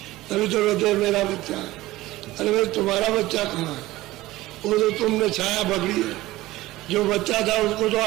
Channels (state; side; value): quieter; left; 17.6 dB